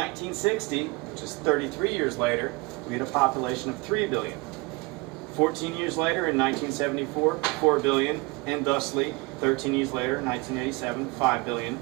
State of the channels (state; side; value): quieter; left; 26.4 dB